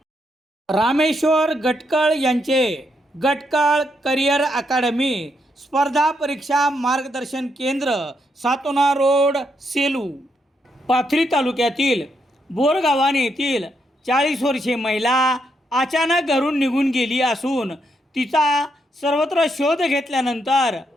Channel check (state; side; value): normal; both; correlation 0.78